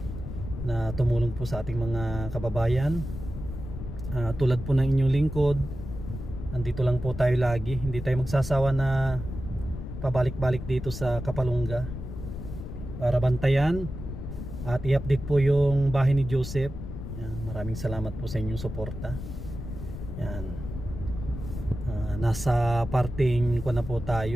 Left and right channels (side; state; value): left; noise; rumble, 8 dB below the sound